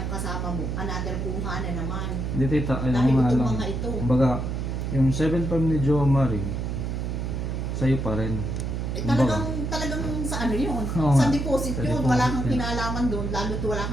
kasama mo, another kuha na naman. Hindi tita, ayun Dahil nga itong lang. mga ito. Kumbaga, yung 7.5 ni Jo Marie, sa'yo pa rin. Eh, talagang sa ano yun, Oo sa nga. deposit Sa yun, deposit wala kang yun. kinalaman doon, lalo't wala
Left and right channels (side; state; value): right; noise; hum, 2 dB below the sound